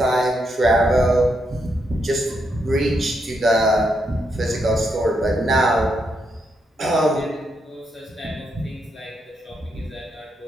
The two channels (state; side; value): normal; both; correlation 0.80